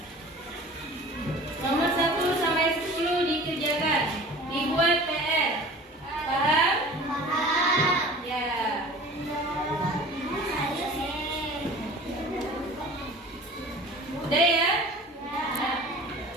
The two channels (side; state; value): both; normal; correlation 0.42